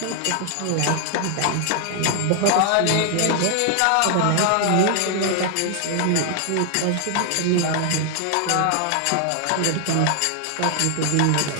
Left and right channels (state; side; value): different; both; correlation 0.00